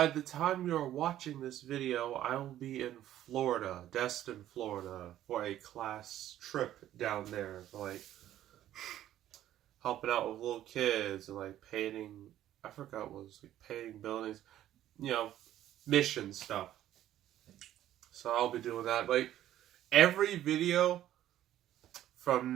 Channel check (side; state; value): left; quieter; 12.5 dB